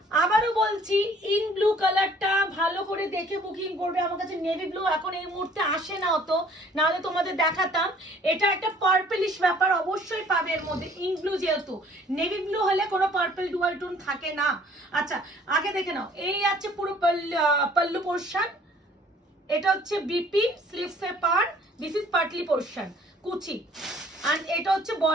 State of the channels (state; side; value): normal; both; correlation 0.56